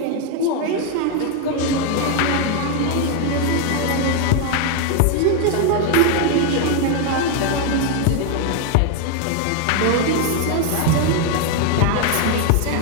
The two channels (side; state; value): both; different; correlation 0.01